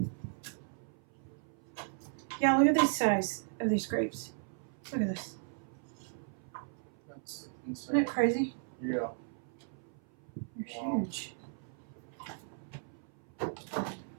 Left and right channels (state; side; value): silent; left; 54 dB below the other